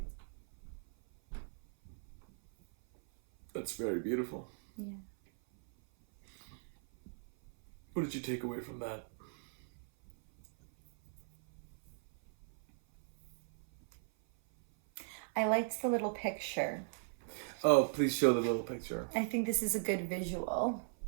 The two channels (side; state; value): left; silent; 52 dB below the other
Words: That's very beautiful. Yeah. What did you take away from that? I liked the little picture. Oh, please show the little picture. I think this is a good visual.